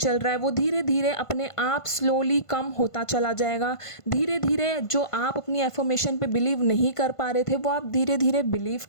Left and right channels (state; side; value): late; right; 1.5 ms